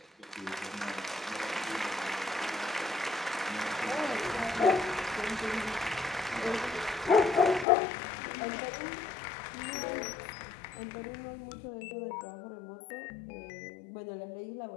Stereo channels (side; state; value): right; drops out; at 7.7 s